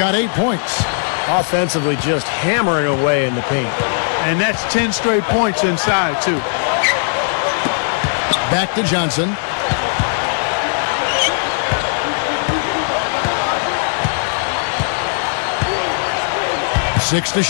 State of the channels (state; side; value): silent; right; 62 dB below the other